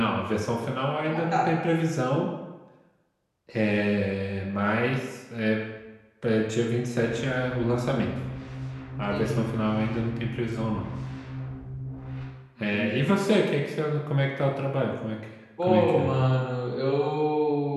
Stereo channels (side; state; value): both; identical; correlation 1.00